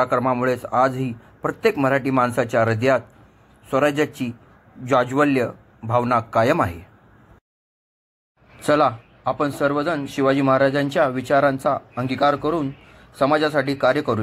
आजही प्रत्येक मराठी माणसाच्या हृदयात स्वराज्याची जाज्वल्य भावना कायम आहे. चला, आपण सर्वजण शिवाजी महाराजांच्या विचारांचा अंगीकार करून समाजासाठी कार्य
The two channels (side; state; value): both; identical; correlation 1.00